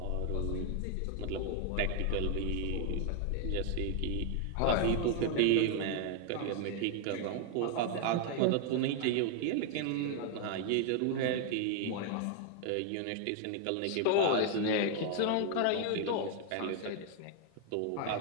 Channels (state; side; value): different; both; correlation 0.00